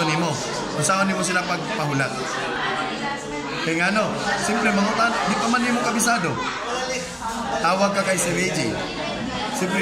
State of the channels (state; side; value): identical; both; correlation 1.00